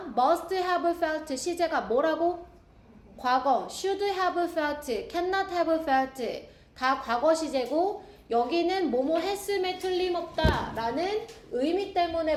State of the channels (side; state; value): both; identical; correlation 1.00